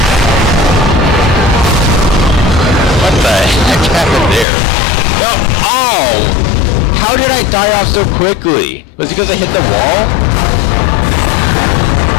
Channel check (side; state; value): right; drops out; at 4.5 s